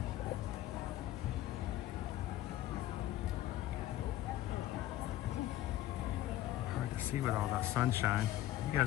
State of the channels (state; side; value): quieter; right; 13.9 dB